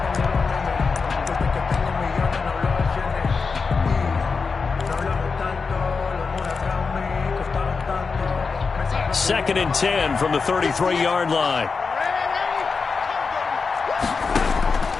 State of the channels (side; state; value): right; quieter; 4.8 dB